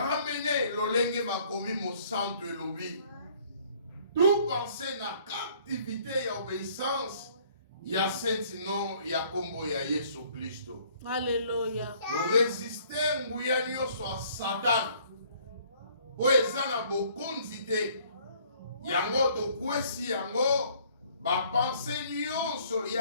lolenge makomi mosanto elobi. Tout penser na captivité ya obéissance ya saint nom ya kombo ya Yesu Kristo. Alléluia. Résister nguya nyonso a Satan. Po eza na bokonzi te. Yango tokwesi yango ba pensée nyonso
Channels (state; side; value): inverted; both; correlation -0.59